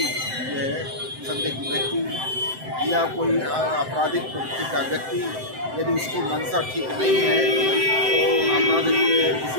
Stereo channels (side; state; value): left; late; 7.8 ms